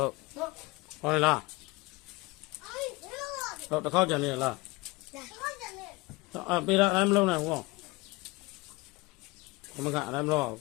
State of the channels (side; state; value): right; quieter; 23.2 dB